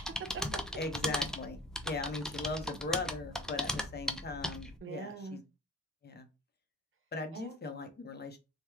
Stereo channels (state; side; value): normal; both; correlation 0.42